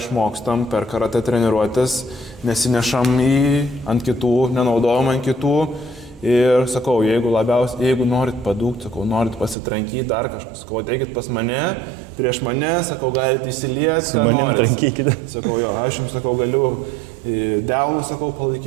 per karatė treniruotės, nesinešam ant kitų, nenaudojam ant kitų. Ir sakau, jeigu norit padūkti, sakau, norit pasitrankyti dar kažkas, sakau, ateikit pas mane, prieš mane, sakau, galite įsilieti, ką norit. Sakau, jo, aš jums, sakau, galiu delnų, sakau,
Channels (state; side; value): drops out; left; at 9.6 s